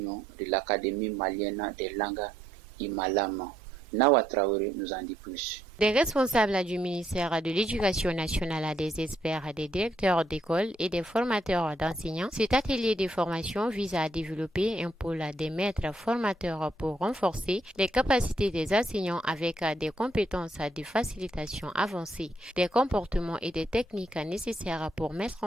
de l'Académie malienne des langues Imalama. Nawa Traoré nous en dit plus. Des responsables du ministère de l'Éducation nationale, des experts, des directeurs d'école et des formateurs d'enseignants, cet atelier de formation vise à développer un pôle des maîtres formateurs pour renforcer les capacités des enseignants avec des compétences de facilitation avancées, des comportements et des techniques nécessaires pour mettre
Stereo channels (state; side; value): normal; both; correlation 0.74